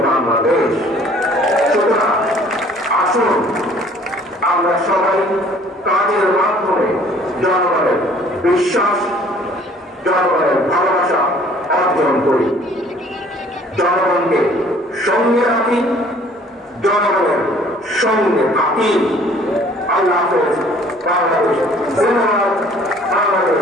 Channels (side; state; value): both; normal; correlation 0.55